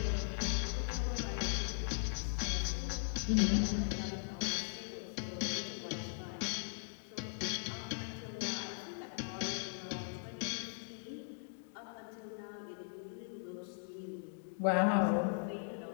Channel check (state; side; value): silent; right; digital silence